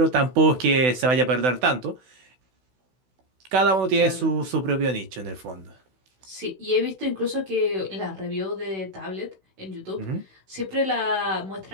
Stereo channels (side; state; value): left; late; 16 ms